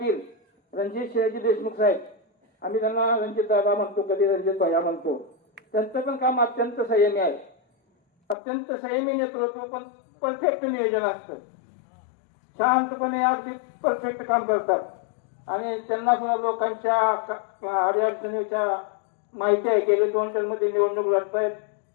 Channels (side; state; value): right; drops out; at 8.3 s